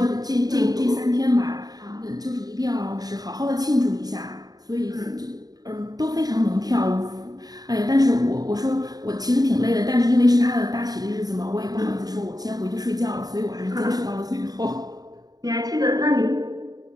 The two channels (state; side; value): late; left; 0.18 ms